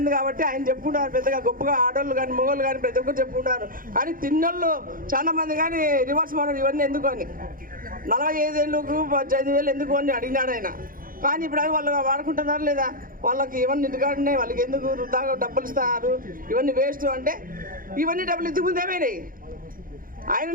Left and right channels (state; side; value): late; left; 0.41 ms